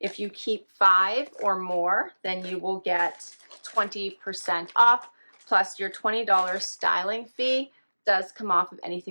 you keep 5 or more, then you will get 20% off, plus your $20 styling fee does come off of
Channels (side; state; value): both; inverted; correlation -1.00